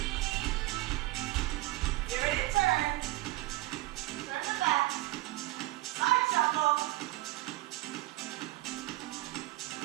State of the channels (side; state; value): left; quieter; 18.7 dB